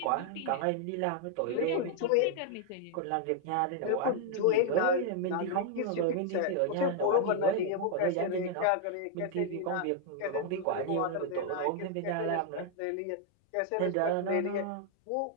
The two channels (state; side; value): different; both; correlation 0.00